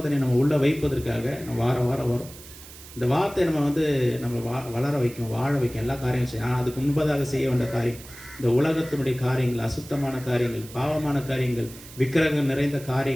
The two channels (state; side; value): noise; right; hiss, 17 dB below the sound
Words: நம்ம உள்ள வைப்பதற்காக நம்ம வாரம் வரும். இந்த வார்த்தை நம்ம வளர வைக்கும், வாழ வைக்கும், எல்லா காரியங்களும் செய்யும். ஆனால் அதுக்கு முன்பதாக செய்ய வேண்டிய காரியம் இந்த உலகத்தினுடைய காரியங்கள், அசுத்தமான காரியங்கள், பாவமான காரியங்கள், விக்கிரகம் நிறைந்த